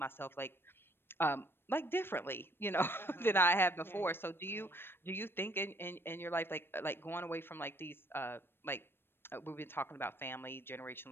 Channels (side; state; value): right; late; 0.10 ms